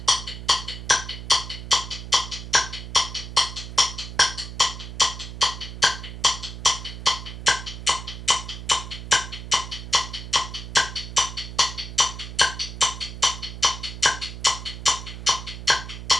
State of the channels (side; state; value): right; noise; hum, 10 dB below the sound